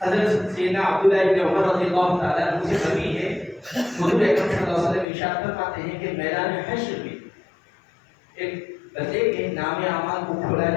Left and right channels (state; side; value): drops out; right; at 5.1 s